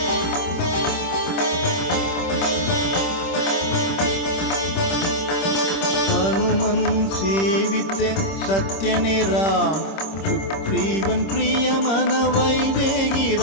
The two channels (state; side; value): late; right; 25 ms